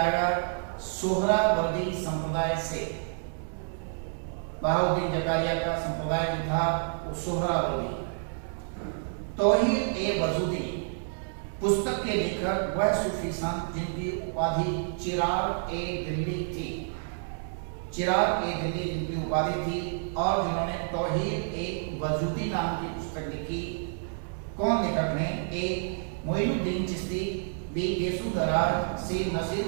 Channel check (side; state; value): left; silent; digital silence